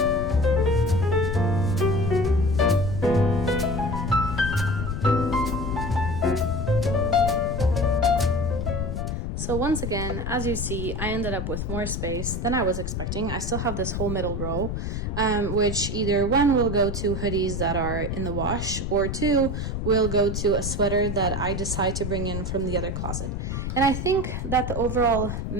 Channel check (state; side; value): noise; left; rumble, 3 dB below the sound